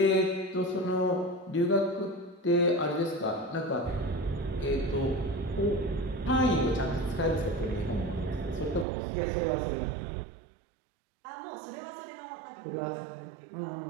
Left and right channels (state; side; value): drops out; left; at 8.8 s